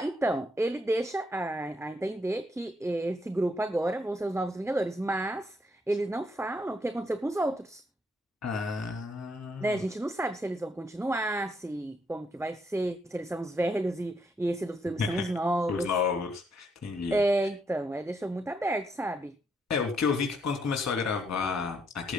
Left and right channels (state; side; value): normal; both; correlation 0.75